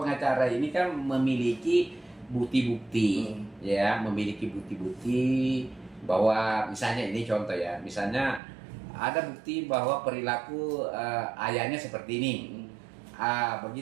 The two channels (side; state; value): left; drops out; at 8.4 s